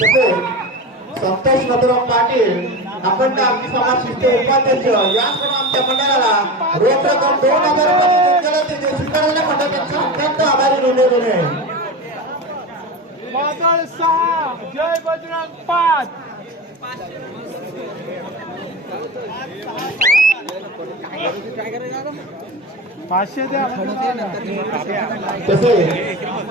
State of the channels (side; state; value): both; normal; correlation 0.25